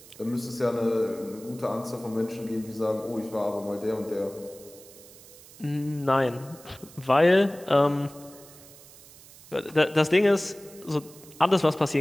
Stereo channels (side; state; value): right; noise; hiss, 21 dB below the sound